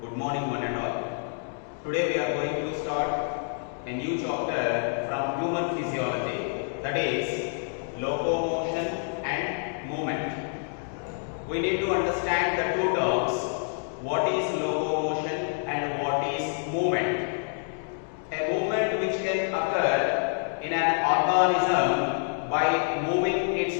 Good morning one and all. Today we are going to start a new chapter from human physiology, that is locomotion and movement. We need to understand the two terms, what is locomotion and what is movement. A movement which can occur in an organism by moving its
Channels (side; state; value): right; silent; 60 dB below the other